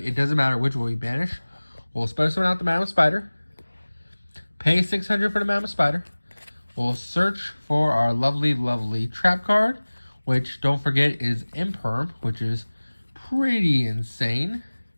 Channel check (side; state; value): both; inverted; correlation -1.00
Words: doesn't matter which one we banish. We'll spell summon out the Madam Spider. Pay 600 for the Madam Spider. We'll search for our lovely trap card, which, don't forget, is Imperm, which is pretty insane.